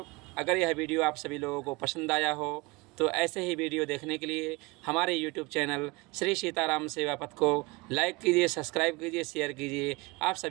अगर यह वीडियो आप सभी लोगों को पसंद आया हो तो ऐसे ही वीडियो देखने के लिए हमारे YouTube चैनल श्री सीताराम सेवा पथ को लाइक कीजिए, सब्सक्राइब कीजिए, शेयर कीजिए। आप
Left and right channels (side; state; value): left; quieter; 24.7 dB